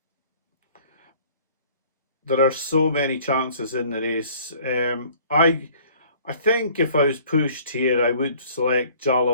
There are so many chances in the race. I think if I was pushed here I would select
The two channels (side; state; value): both; inverted; correlation -0.54